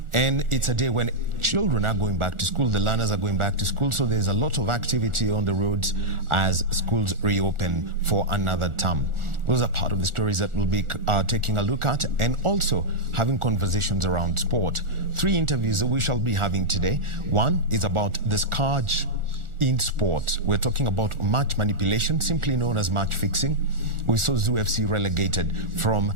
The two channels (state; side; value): late; left; 1.4 ms